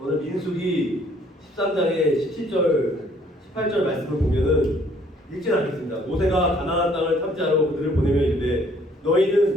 오늘 민수기 13장의 17절, 18절 말씀을 보면은 읽지는 않겠습니다. 모세가 가나안 땅을 탐지하러 그들을 보내며 이르되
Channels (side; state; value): both; normal; correlation 0.62